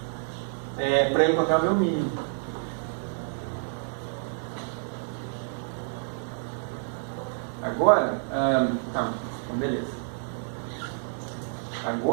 para eu encontrar o meu mínimo. Agora, então beleza.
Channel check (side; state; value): left; silent; 59 dB below the other